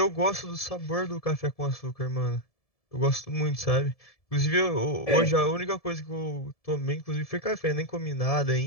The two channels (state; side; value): late; right; 1.7 ms